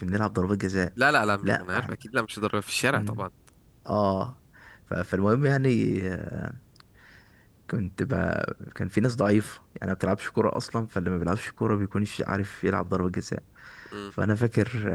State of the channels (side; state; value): both; identical; correlation 1.00